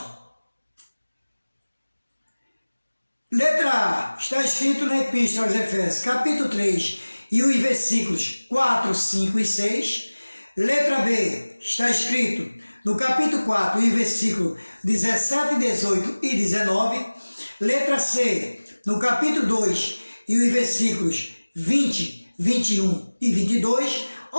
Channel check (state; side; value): inverted; both; correlation -1.00